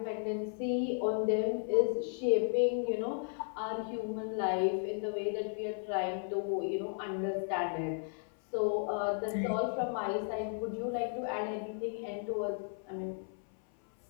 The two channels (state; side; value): silent; right; 55 dB below the other